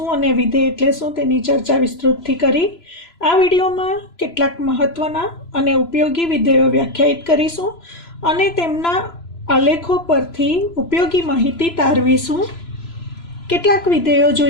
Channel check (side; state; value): right; late; 3.0 ms